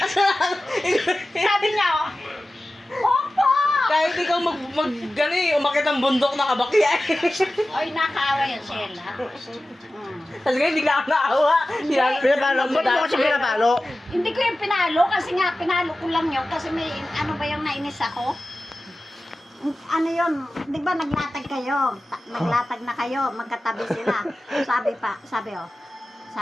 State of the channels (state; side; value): normal; both; correlation 0.95